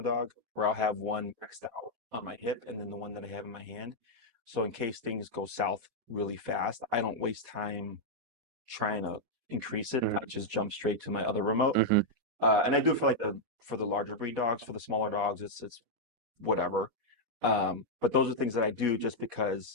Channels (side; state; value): left; late; 4.1 ms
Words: dog, where I'll have one maxed out on my hip, and then the one that I have in my hand. So in case things go south really fast, I don't waste time trying to increase it. I Hmm. just jump straight to my other remote. Hmm. And I do it for the larger breed dogs. For the smaller dogs, it's whatever. But those are things that I do just